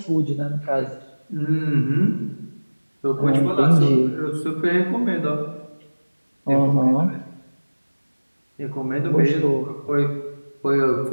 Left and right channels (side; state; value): both; inverted; correlation -1.00